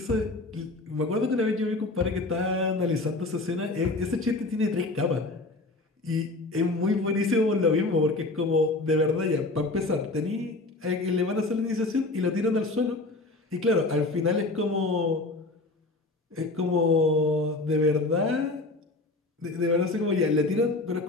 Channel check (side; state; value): right; quieter; 3.0 dB